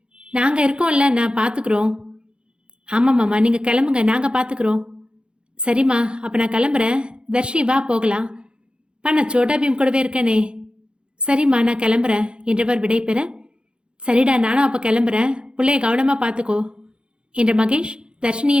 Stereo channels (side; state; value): left; late; 0.054 ms